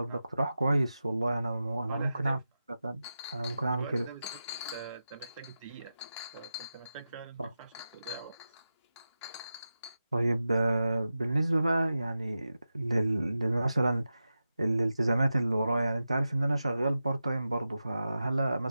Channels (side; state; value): both; inverted; correlation -0.92